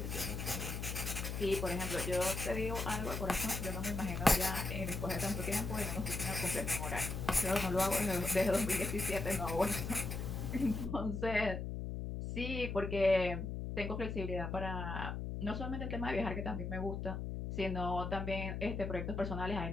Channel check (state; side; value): noise; left; hum, 4 dB below the sound